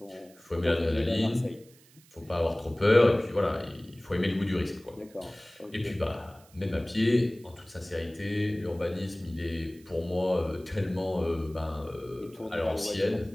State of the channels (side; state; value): right; noise; hiss, 27 dB below the sound